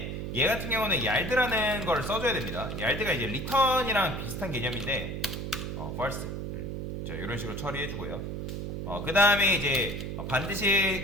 얘 같은 경우는 yard라는 걸 써줘야 됩니다. yard가 이제 return이랑 비슷한 개념인데, false. 자, 이런 식으로 처리해주고요. 그 다음에 이제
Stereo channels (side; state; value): right; noise; hum, 5 dB below the sound